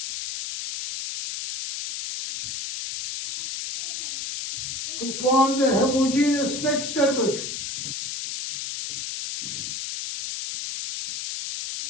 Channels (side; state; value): left; noise; hiss, 5 dB below the sound